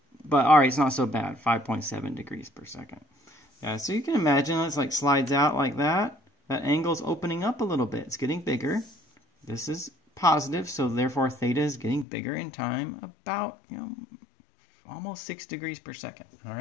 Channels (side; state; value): right; drops out; at 12.1 s